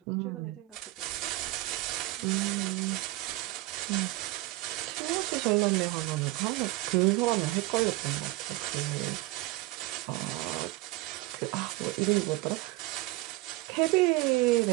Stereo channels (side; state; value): left; quieter; 19.9 dB